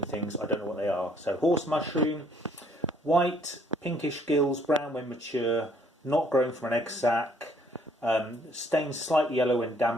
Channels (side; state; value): both; normal; correlation 0.63